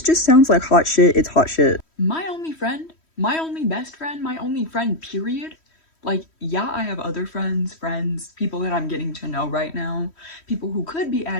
just sounds like hot shit, it's hot shit. My only friend, my only best friend, my only friend, period. Like, yeah, I have other friends, people that I'm getting to know right now, people who could be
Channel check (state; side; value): late; right; 3.1 ms